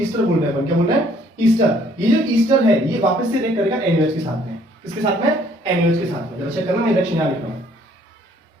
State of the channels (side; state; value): both; normal; correlation 0.61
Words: बोल रहे हैं, क्या बोल रहे हैं? ईस्टर। ये जो ईस्टर है ये वापस से रिएक्ट करेगा NaOH के साथ में। किसके साथ में? NaOH के साथ में। जरा चेक करना, मैं रिएक्शन यहां लिख रहा हूं,